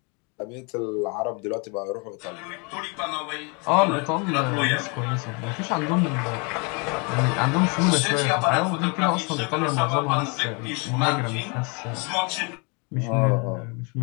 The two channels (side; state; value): right; quieter; 32.7 dB